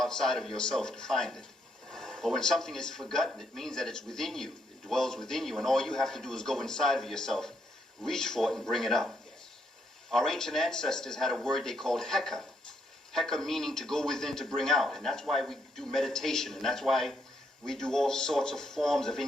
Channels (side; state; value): both; normal; correlation 0.75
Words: of yourself to find it. But when something is forgotten, it means that it's within you. It dwells within you, and all you have to do is go inside of yourself, reach for it, and bring it up. Our ancient ancestors had a word they called heka. Heka meaning to go within, to bring out. And that's why we do meditation, and that's why we do all sorts of forms of